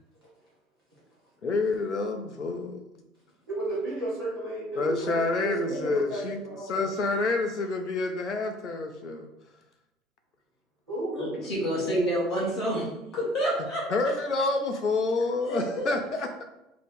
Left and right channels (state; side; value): normal; both; correlation 0.56